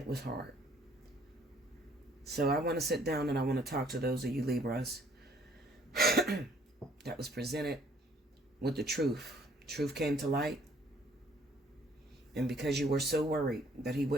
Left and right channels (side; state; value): both; normal; correlation 0.62